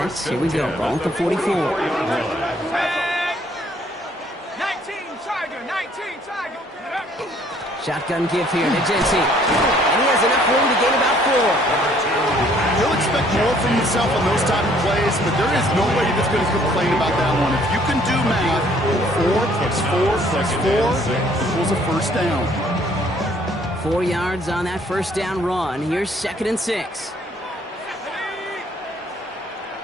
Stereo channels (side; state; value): both; normal; correlation 0.61